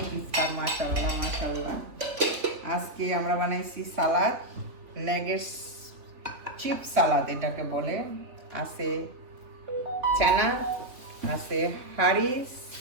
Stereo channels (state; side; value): late; left; 3.7 ms